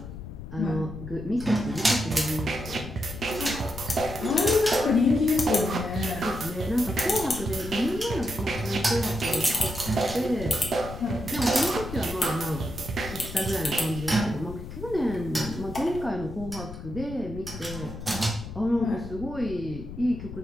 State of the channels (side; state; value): left; noise; rumble, 11 dB below the sound